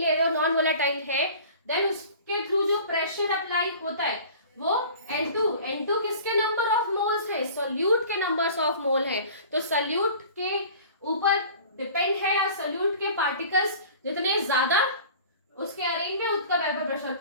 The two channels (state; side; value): inverted; both; correlation -0.43